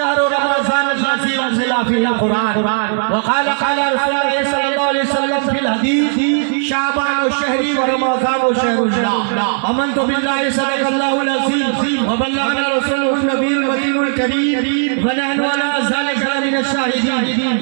رمضان الذي أنزل فيه القرآن وقال رسول الله صلى الله عليه وسلم في الحديث شعبان شهري ورمضان شهر الله آمنت بالله صدق الله العظيم وبلغنا رسوله النبي المدين الكريم ونحن على ذلك من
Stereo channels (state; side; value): silent; left; 57 dB below the other